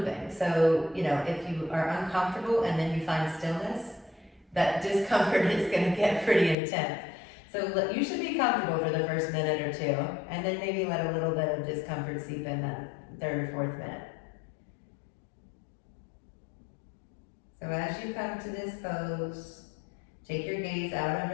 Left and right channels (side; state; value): right; drops out; at 6.6 s